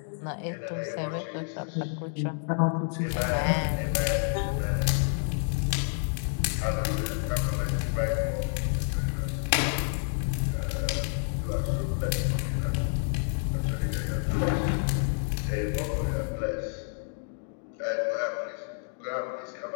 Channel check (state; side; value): silent; right; digital silence